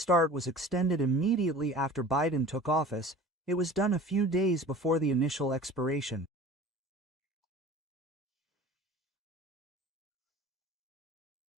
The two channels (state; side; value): normal; both; correlation 0.41